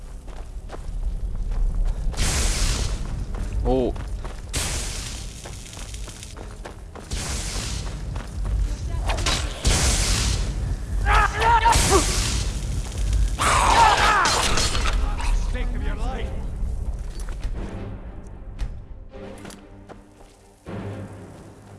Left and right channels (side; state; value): both; identical; correlation 1.00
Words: Oh. Stake of your life.